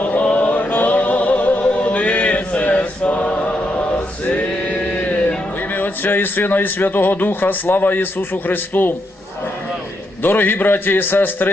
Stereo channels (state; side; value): normal; both; correlation 0.80